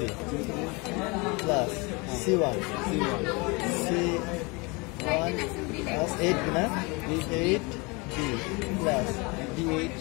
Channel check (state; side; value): quieter; right; 27.5 dB